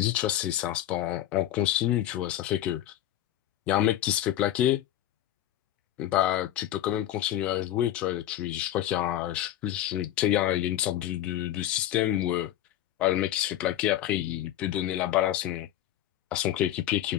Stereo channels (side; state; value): right; quieter; 12.6 dB